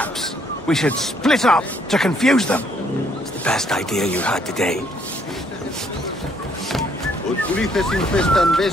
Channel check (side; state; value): both; normal; correlation 0.67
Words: we should split up to confuse them. It's the best idea you had today. infestan